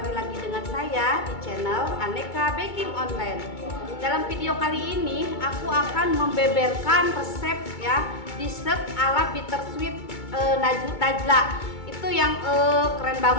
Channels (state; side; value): late; right; 2.2 ms